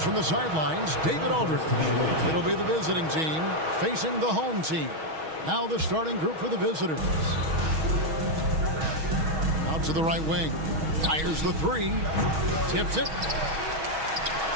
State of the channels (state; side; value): late; left; 6.3 ms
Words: from the sidelines, David Aldridge. It'll be the visiting team facing the home team. Now the starting group for the visitors. Out to the right wing. Fires the three. Tips it.